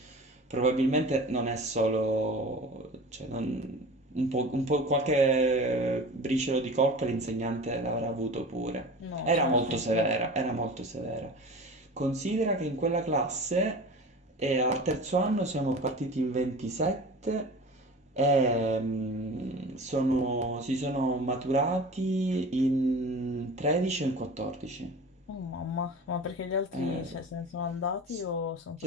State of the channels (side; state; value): both; normal; correlation 0.37